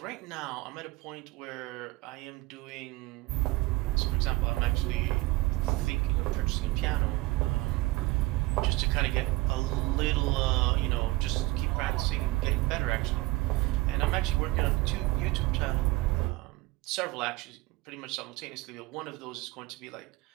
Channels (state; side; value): quieter; left; 21.0 dB